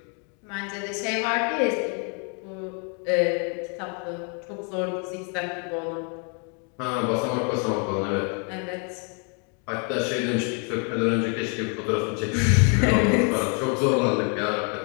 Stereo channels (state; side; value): quieter; right; 38.5 dB